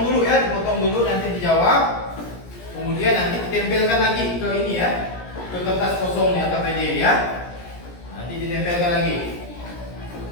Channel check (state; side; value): late; right; 17 ms